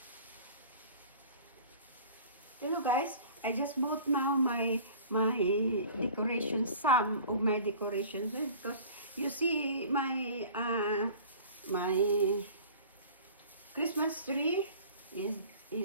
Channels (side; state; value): both; inverted; correlation -0.44